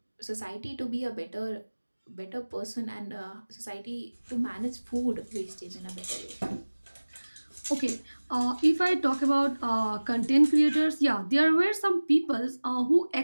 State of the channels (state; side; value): inverted; both; correlation -1.00